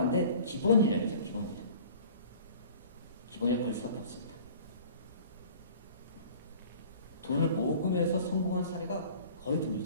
기본 인력이죠. 기본 인력. 기본 인력 걸 수밖에 없습니다. 돈을 모금해서 성공한 사례가 거의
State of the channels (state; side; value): inverted; both; correlation -0.45